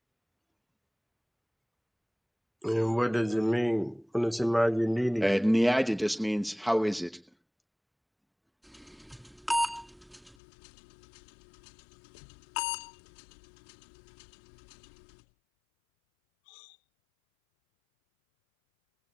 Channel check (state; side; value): drops out; right; at 10.4 s